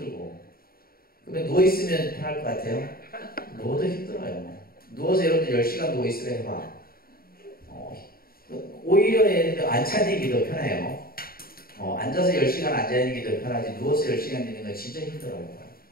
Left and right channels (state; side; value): late; right; 0.43 ms